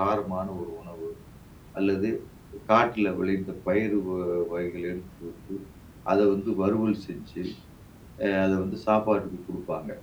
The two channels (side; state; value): both; identical; correlation 1.00